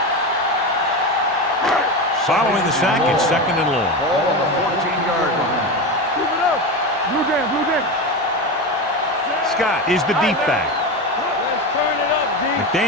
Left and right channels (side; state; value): both; normal; correlation 0.20